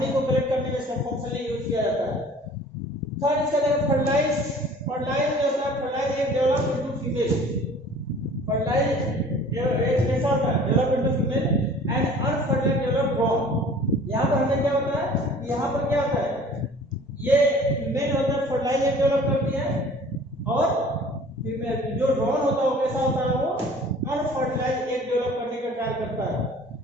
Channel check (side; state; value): both; normal; correlation 0.48